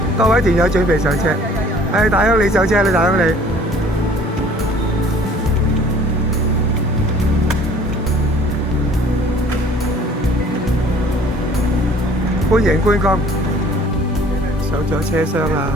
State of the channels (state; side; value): normal; both; correlation 0.53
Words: 各位團友準備上車。大鄉里上車啦，大鄉里。歡迎觀光。上咗車廂啦，